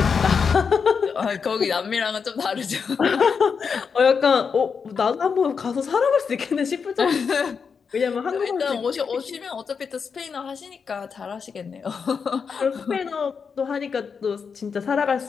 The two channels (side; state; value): right; quieter; 5.9 dB